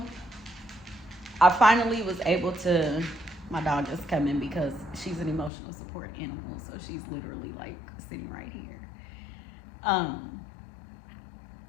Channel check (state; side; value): drops out; right; at 5.5 s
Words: I finally was able to My dog is coming because she's an emotional support animal, so she's literally like sitting right here.